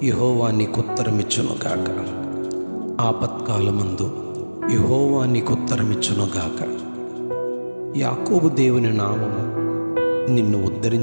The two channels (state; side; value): inverted; both; correlation -1.00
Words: యెహోవా నీకు ఉత్తరమిచ్చునుగాక. ఆపత్కాలమందు యెహోవా నీకు ఉత్తరమిచ్చునుగాక. యాకోబు దేవుని నామము నిన్ను